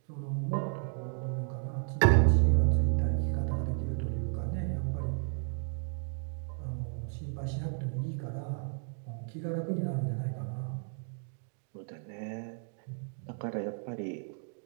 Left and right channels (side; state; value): left; silent; 56 dB below the other